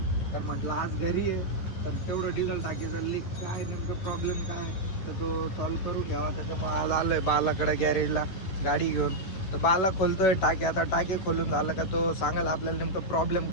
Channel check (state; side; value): late; right; 11 ms